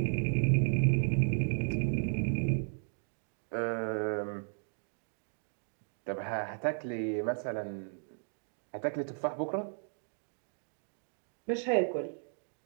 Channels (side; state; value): left; silent; digital silence